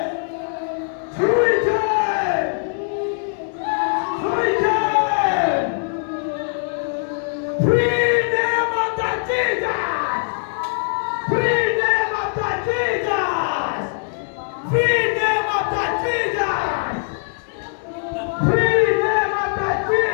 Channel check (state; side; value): silent; right; 65 dB below the other